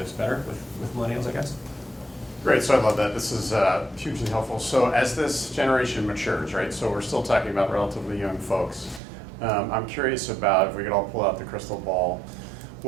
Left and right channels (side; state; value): left; drops out; at 9.0 s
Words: better with millennials, I guess. Great, so I love that. This is hugely helpful. So as this generation matures, right, so we're still talking about relatively young folks. I'm curious about, if we could all pull out the crystal ball,